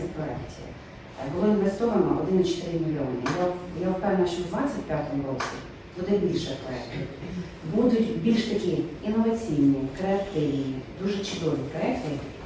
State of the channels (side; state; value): both; identical; correlation 1.00